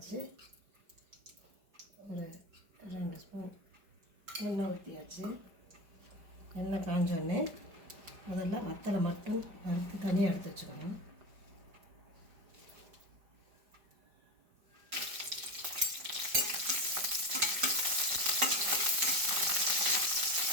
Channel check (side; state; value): left; late; 4.9 ms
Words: ஒரு 2 ஸ்பூன் எண்ணெய் ஊற்றியாச்சு. எண்ணெய் காஞ்சோடனே முதல்ல வத்தலை மட்டும் வறுத்து தனியாக எடுத்து வச்சுக்கணும்.